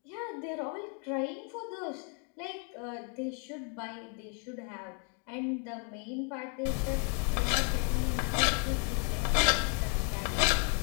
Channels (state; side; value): quieter; right; 39.7 dB